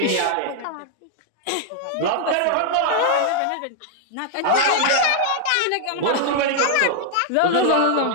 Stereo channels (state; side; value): different; both; correlation -0.01